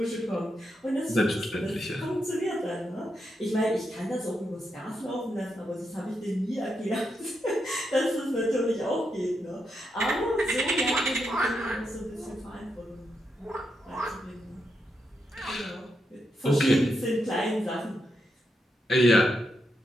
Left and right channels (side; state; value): both; normal; correlation 0.83